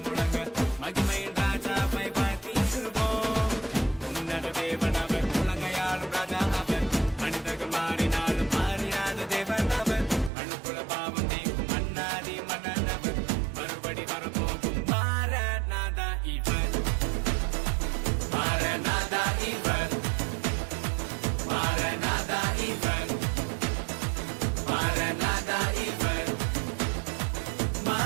முழங்க மகிமையின் ராஜாவை பார்த்திடுவோம். உன்னத தேவன் அவர், உலகையாளும் ராஜா அவர், மனிதர்கள் மாறினாலும் மாறினாத தேவன் அவர், அணுக்குல பாவம் நீக்கும் மன்னாதி மன்னன் அவர், மறுபடி வரப்போகும் மாரநாதா இவர், மாரநாதா இவர், மாரநாதா இவர், மாரநாதா இவர்,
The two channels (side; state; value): left; drops out; at 10.3 s